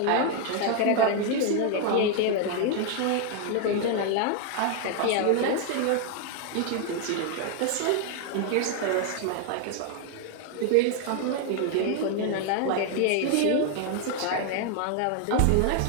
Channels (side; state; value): both; different; correlation 0.00